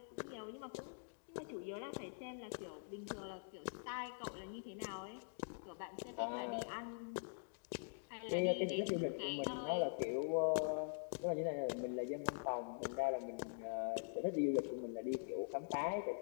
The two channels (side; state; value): right; silent; digital silence